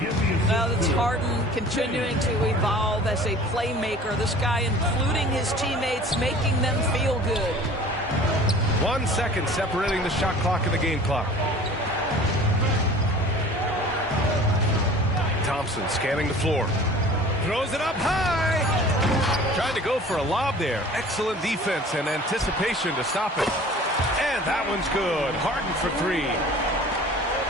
Well, it's Harden continuing to evolve as a playmaker. This guy, including his teammates, making them feel good. 1 second separating the shot clock and the game clock. Thompson scanning the floor. Throws it up high. Trying to go for a lob there. Excellent defense and anticipation to stop it. And that one's good. Harden for 3.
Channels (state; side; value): normal; both; correlation 0.45